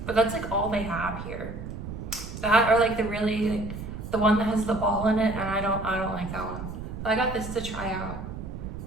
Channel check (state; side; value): noise; right; rumble, 8 dB below the sound